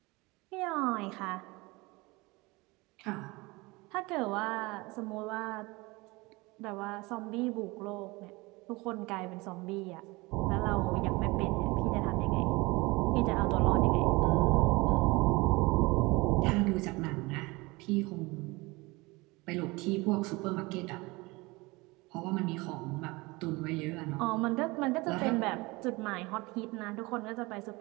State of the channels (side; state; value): left; quieter; 23.7 dB